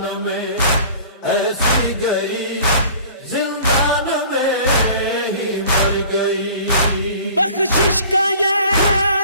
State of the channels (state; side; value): inverted; both; correlation -0.46